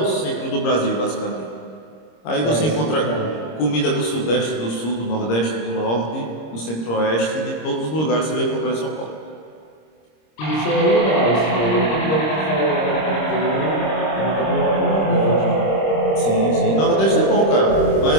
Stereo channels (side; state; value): right; late; 26 ms